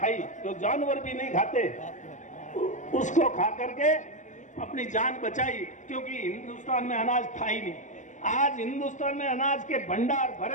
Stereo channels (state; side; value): late; right; 0.36 ms